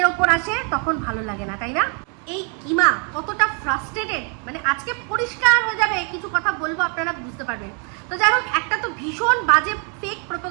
ওপর আসে তখন ভালো লাগে না, তাই না? এই কিমা কতটা ফ্রাস্ট্রেটেড, মানে আজকে পরিষ্কার হয়ে যাবে, কিছু কথা বলবো আপনারা বুঝতে পারবেন। তো যাই হোক, একটা তো ভীষণ বাজে ফেক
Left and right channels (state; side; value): quieter; left; 38.0 dB